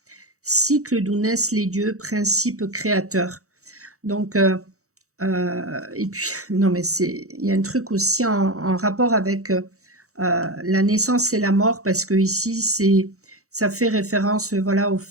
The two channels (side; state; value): left; late; 0.65 ms